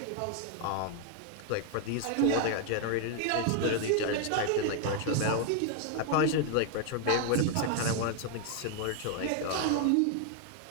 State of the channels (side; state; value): both; different; correlation 0.00